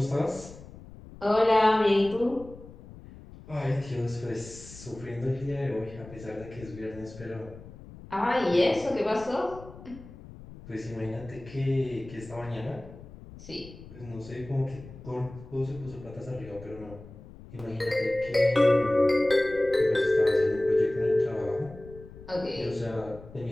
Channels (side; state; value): left; noise; rumble, 17 dB below the sound